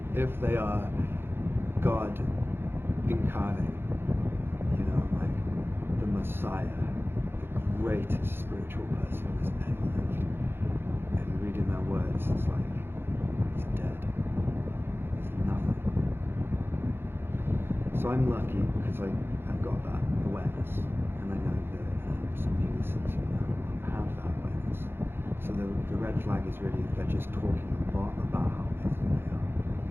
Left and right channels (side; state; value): left; late; 0.11 ms